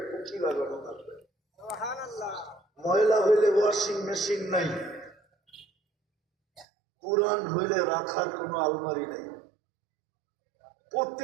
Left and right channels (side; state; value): left; drops out; at 6.7 s